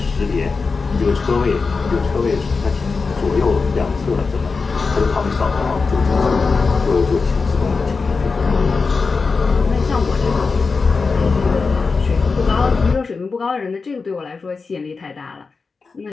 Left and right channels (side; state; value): right; quieter; 4.5 dB